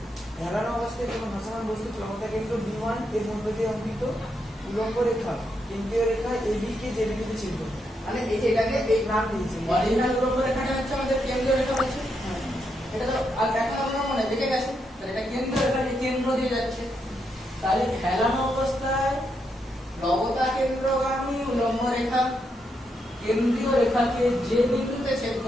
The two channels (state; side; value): normal; both; correlation 0.81